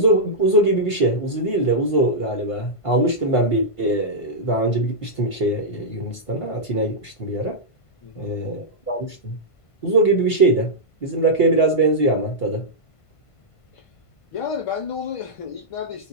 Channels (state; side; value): late; right; 1.5 ms